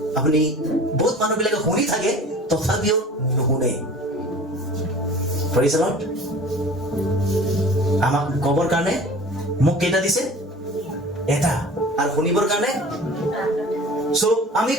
আপুনি বহুত মানুহবিলাকে শুনি থাকে তথাপিও নুশুনে। Praise the Lord. আমাক কবৰ কাৰণে মোক কেইটা দিছে? এটা। আৰু শুনিবৰ কাৰণে সো আমি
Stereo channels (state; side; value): normal; both; correlation 0.43